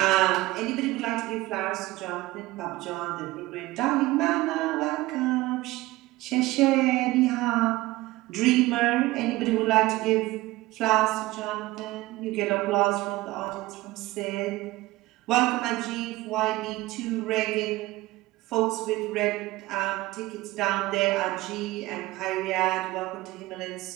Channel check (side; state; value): left; quieter; 19.0 dB